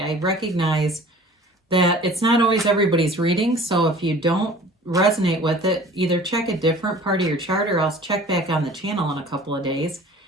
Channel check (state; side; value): normal; both; correlation 0.46